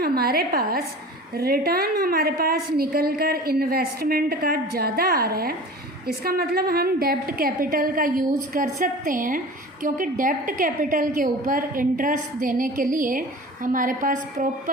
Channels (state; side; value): normal; both; correlation 0.38